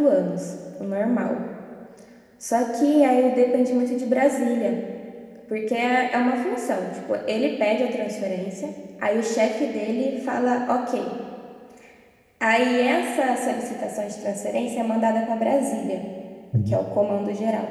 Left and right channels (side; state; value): both; identical; correlation 1.00